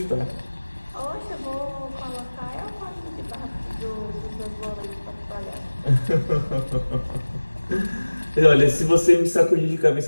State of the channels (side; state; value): both; inverted; correlation -1.00